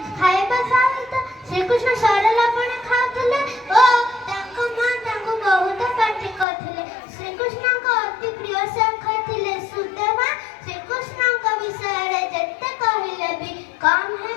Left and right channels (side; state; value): right; drops out; at 6.5 s